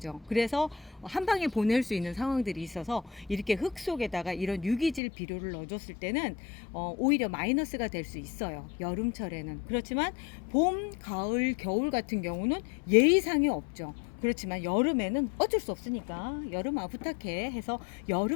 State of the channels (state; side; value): drops out; right; at 5.0 s